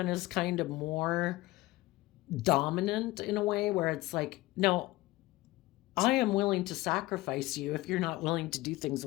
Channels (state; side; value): quieter; right; 19.0 dB